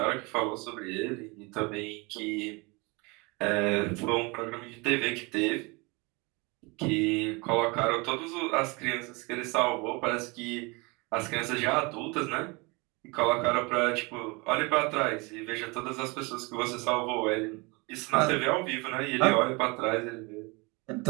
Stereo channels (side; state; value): left; quieter; 27.6 dB